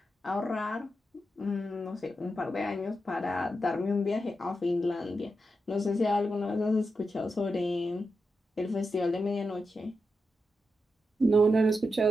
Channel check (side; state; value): both; normal; correlation 0.87